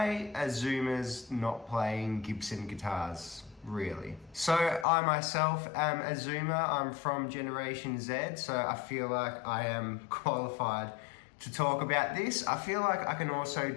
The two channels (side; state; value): right; drops out; at 4.9 s